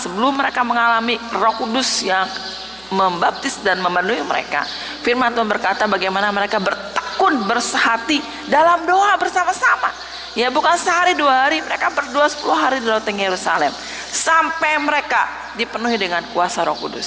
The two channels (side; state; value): right; noise; hum, 28 dB below the sound